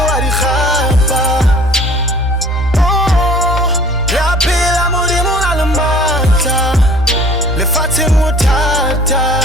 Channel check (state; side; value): normal; both; correlation 0.50